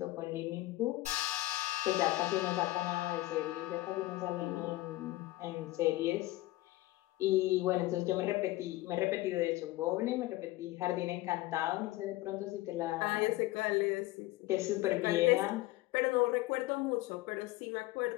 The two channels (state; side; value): quieter; right; 18.0 dB